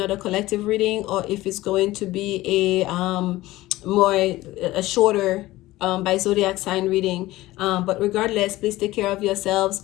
collective reading or if it's going to be a shorter by zodiac sign reading. But regardless, please take care of yourselves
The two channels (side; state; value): right; quieter; 17.5 dB